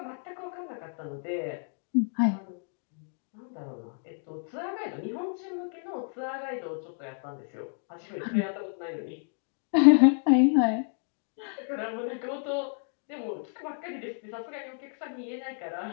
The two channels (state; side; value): silent; right; 57 dB below the other